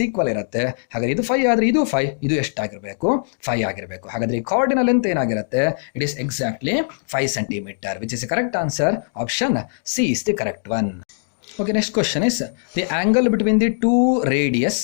ಈಕ್ವಲ್ ಇರುತ್ತೆ. ಹಾಗಾದರೆ ಇದು 5 ಆದರೆ ಇದು 5, ಇದು ಎಷ್ಟಾಗಿರಬೇಕು? 5 ಆಗಿರಬೇಕು. ಹಾಗಾದರೆ ಈ ಕಾರ್ಡಿನ ಲೆಂತ್ ಏನಾಗಿರುತ್ತೆ? It is exactly 5 centimetre, which is the correct answer. Option C is the correct one. Okay, next question is the angle between the two radius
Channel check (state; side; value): silent; right; digital silence